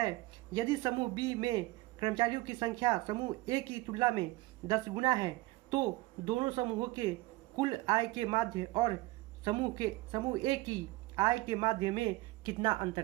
यदि समूह B में कर्मचारियों की संख्या समूह A की तुलना में 10 गुना है तो दोनों समूहों के कुल आय के माध्य और समूह A की आय के माध्य में कितना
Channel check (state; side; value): quieter; left; 20.0 dB